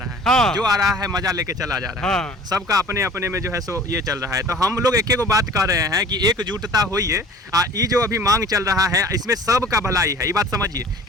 है। हाँ। जो आ रहा है मजा लेके चला जा रहा है। सबका अपने अपने में जो है सो ये चल रहा है। तो हम लोग एक को बात कर रहे हैं कि एकजुटता होइए। ये जो अभी मांग चल रहा है इसमें सबका भलाई है। ये बात समझिए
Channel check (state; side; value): normal; both; correlation 0.46